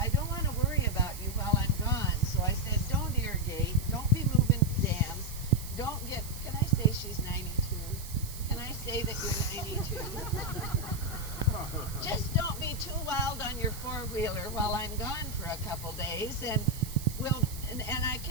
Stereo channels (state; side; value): noise; right; hiss, 13 dB below the sound